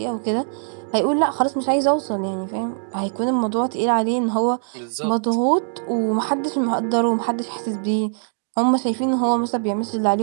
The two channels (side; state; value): left; silent; digital silence